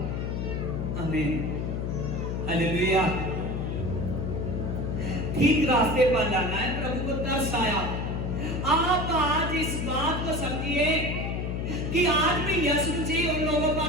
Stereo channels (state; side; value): noise; left; hum, 2 dB below the sound